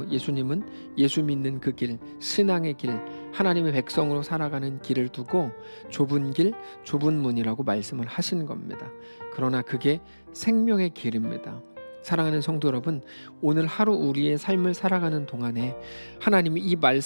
예수님은 예수 믿는 그 길, 신앙의 길, 하나님의 백성으로 살아가는 길을 두고 좁은 길, 좁은 문이라고 말씀을 하신 겁니다. 그러나 그게 생명의 길입니다. 사랑하는 성도 여러분, 오늘 하루 우리의 삶을 살아가는 동안에 하나님이 이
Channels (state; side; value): inverted; both; correlation -1.00